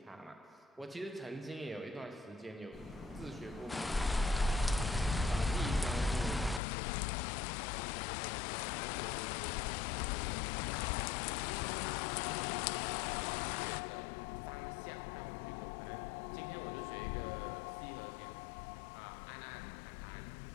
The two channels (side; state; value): right; drops out; at 6.6 s